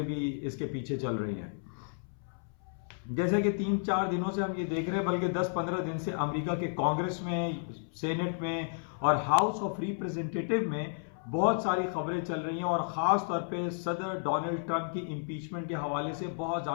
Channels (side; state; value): right; silent; 56 dB below the other